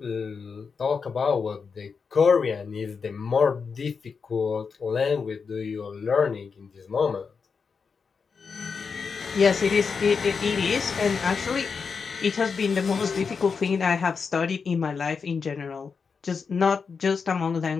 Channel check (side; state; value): right; quieter; 5.5 dB